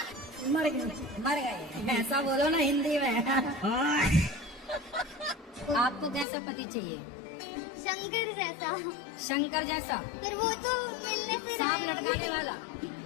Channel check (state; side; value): drops out; right; at 6.2 s